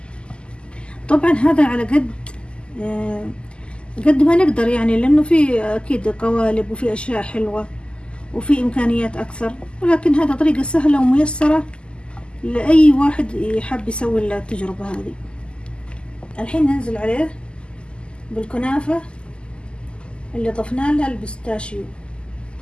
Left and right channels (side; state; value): right; late; 0.050 ms